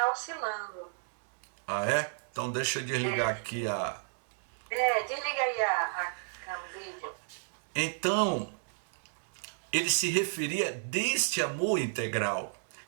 oscilando. Ah, é? Então deixa eu desligar aqui a... Desliga aí o vídeo. Então, ele se referia deste amor integral.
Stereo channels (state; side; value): silent; left; digital silence